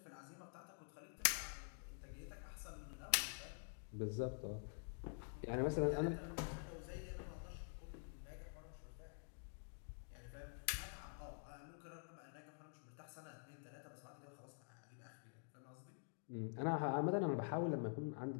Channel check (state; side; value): silent; right; digital silence